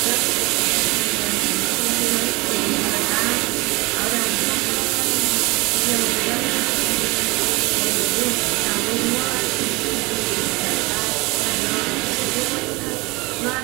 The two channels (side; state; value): left; quieter; 24.3 dB